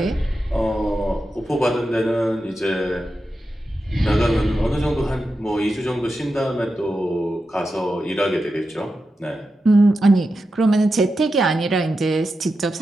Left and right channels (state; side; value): normal; both; correlation 0.90